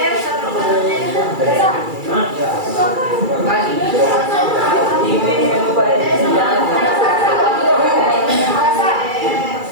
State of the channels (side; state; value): left; late; 2.3 ms